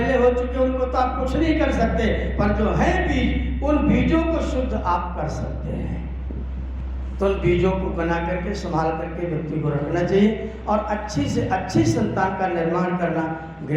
हो चुके उनको तो आप कुछ नहीं कर सकते, पर जो है बीज, उन बीजों को शुद्ध आप कर सकते हैं। तो उन बीजों को बना करके संभाल करके व्यक्ति को रखना चाहिए, और अच्छी से अच्छी संतान का निर्माण करना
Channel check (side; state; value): both; identical; correlation 1.00